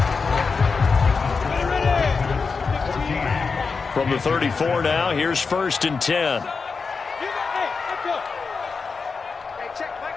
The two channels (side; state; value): right; quieter; 4.9 dB